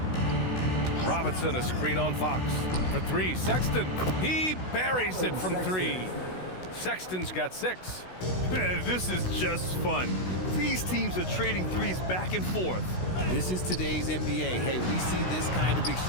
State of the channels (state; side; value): late; right; 16 ms